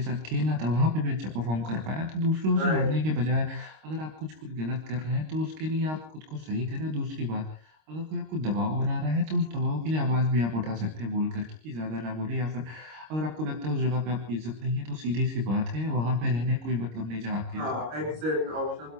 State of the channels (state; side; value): late; left; 26 ms